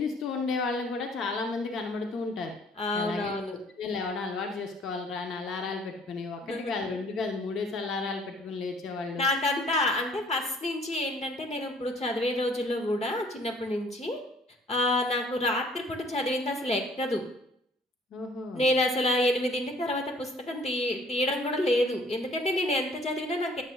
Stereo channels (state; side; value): normal; both; correlation 0.57